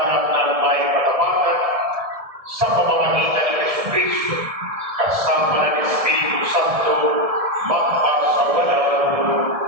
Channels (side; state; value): left; late; 1.7 ms